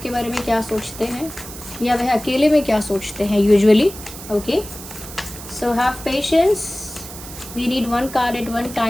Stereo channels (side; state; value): right; noise; hiss, 13 dB below the sound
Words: बारे में क्या सोचते हैं या वह अकेले में क्या सोचते हैं usually. Okay, so have patience, we need one card at one